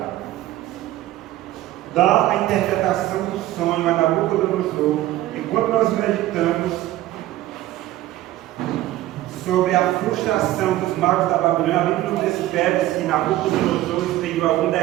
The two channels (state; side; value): quieter; left; 15.2 dB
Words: dar a interpretação do sonho a Nabucodonosor. E quando nós meditamos sobre a frustração dos magos da Babilônia, a Bíblia não descreve se Nabucodonosor expediu algum